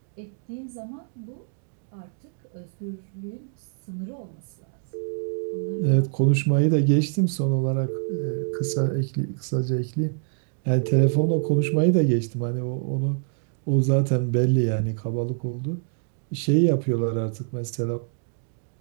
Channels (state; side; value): silent; left; digital silence